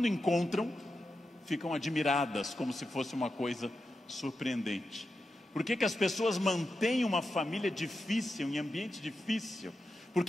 encontram, ficam admiradas como se fosse uma coisa surpreendente? Por que as pessoas mantêm uma família difícil, em ambiente difícil? Por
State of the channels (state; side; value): normal; both; correlation 0.89